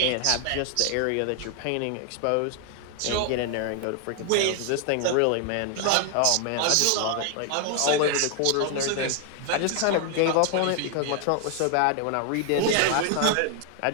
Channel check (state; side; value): different; both; correlation 0.00